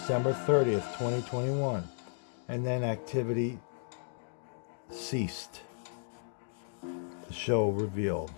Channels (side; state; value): right; silent; digital silence